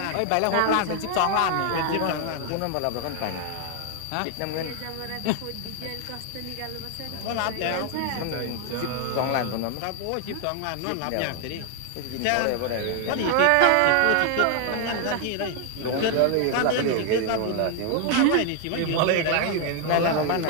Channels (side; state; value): both; different; correlation 0.00